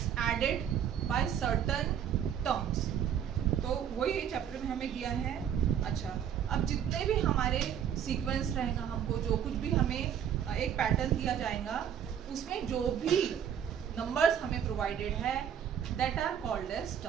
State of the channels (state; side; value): quieter; left; 9.0 dB